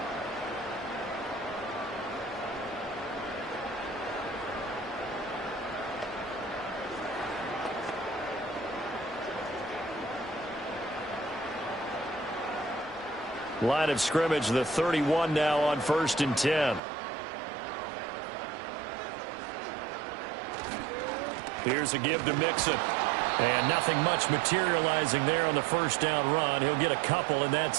Line of scrimmage, the 31 now on 1st and 10. Here's a give to Mixon. And nothing much materializing there on the 1st down run. He'll get a couple, and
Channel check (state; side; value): drops out; left; at 16.8 s